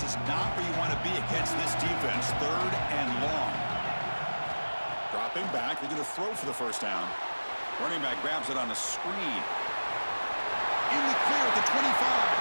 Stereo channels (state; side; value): inverted; both; correlation -1.00